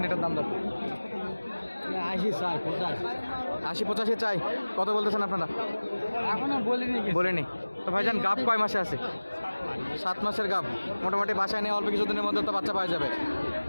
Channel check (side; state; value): both; inverted; correlation -1.00